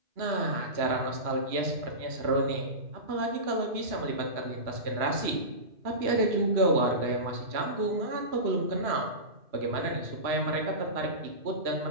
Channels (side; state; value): left; late; 2.9 ms